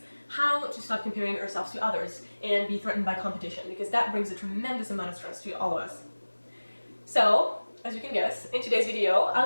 how to stop comparing ourselves to others and be threatened by competition, because that brings a tremendous amount of stress to all of us. So, as you can guess, in today's video,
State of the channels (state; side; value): inverted; both; correlation -1.00